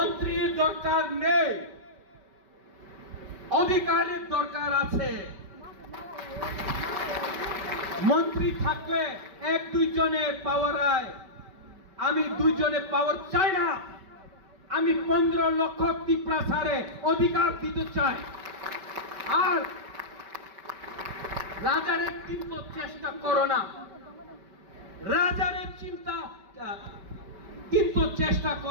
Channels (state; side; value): late; left; 5.2 ms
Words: দরকার নেই, অধিকারের দরকার আছে। মন্ত্রী থাকলে 1-2 জনে পাওয়ার হয়, আমি 2 জনে পাওয়ার চাই না। আমি 15 লক্ষ ত্রিপ্রাসারে অধিকার দিতে চাই। আর রাজারে কিন্তু চেষ্টা করো না, রাজারে চিন্তা কিন্তু চেষ্টা